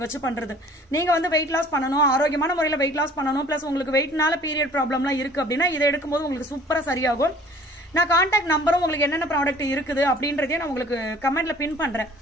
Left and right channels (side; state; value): both; normal; correlation 0.51